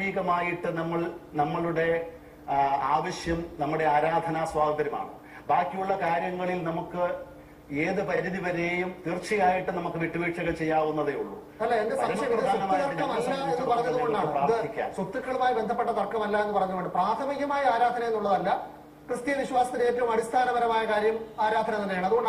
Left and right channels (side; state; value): both; identical; correlation 1.00